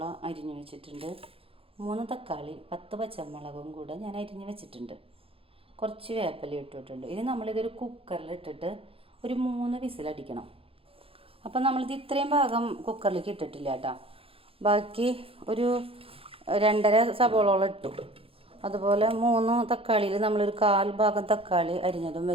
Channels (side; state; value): left; late; 0.27 ms